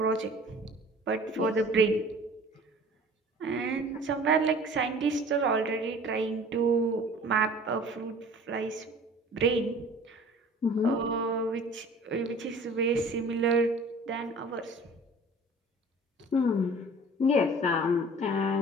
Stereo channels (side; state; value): both; normal; correlation 0.46